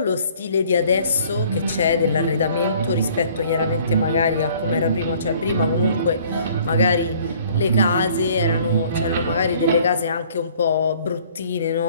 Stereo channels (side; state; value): both; inverted; correlation -0.56